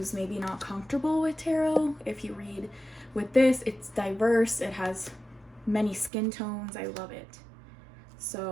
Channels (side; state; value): left; drops out; at 6.1 s